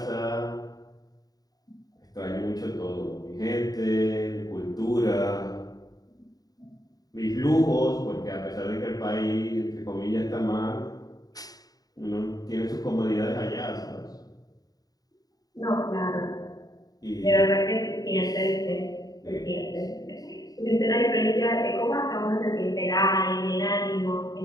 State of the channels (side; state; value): right; late; 0.18 ms